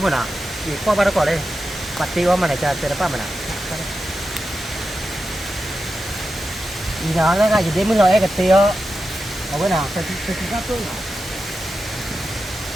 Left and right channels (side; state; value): both; normal; correlation 0.90